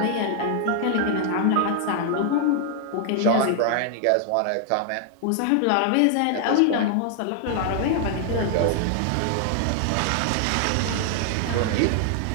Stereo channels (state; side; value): different; both; correlation 0.00